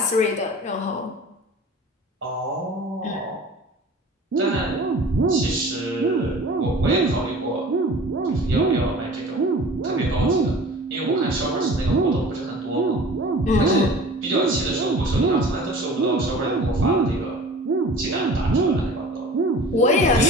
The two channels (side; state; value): both; normal; correlation 0.42